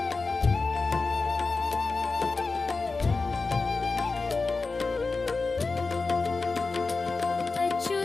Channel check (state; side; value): quieter; right; 4.0 dB